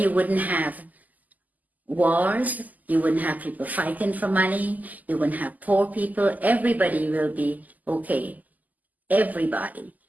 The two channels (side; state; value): left; late; 0.080 ms